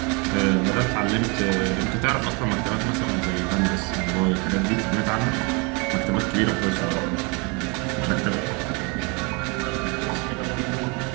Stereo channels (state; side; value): quieter; left; 31.1 dB